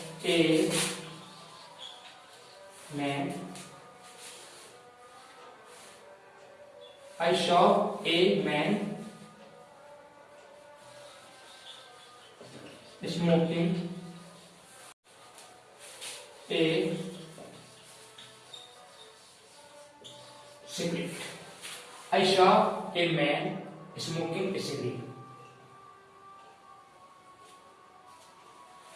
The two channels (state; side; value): identical; both; correlation 1.00